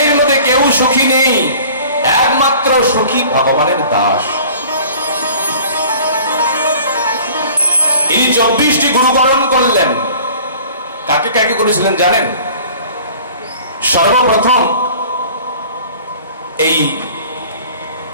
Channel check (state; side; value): inverted; both; correlation -0.47